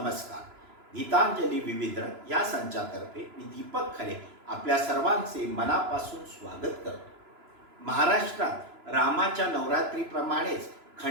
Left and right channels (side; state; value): left; late; 3.0 ms